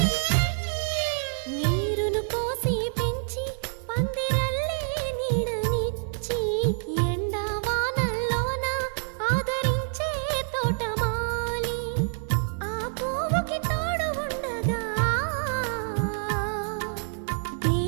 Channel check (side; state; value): left; silent; 60 dB below the other